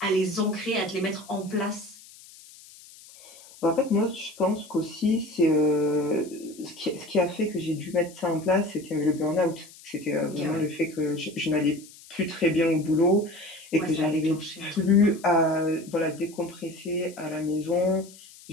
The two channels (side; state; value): left; noise; hiss, 21 dB below the sound